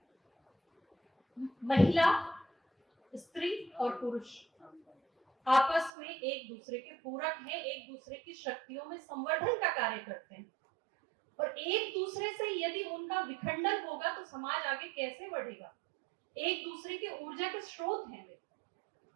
महिला, स्त्री और पुरुष आपस में एक दूसरे के पूरक हैं, एक दूसरे की शक्तियों में संवर्धन का कार्य करते हैं, और एक दूसरे से यदि उनका विखंडन होगा तो समाज आगे कैसे बढ़ेगा? एक दूसरे के ऊर्जा के स्रोत हैं वे,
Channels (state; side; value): drops out; left; at 5.9 s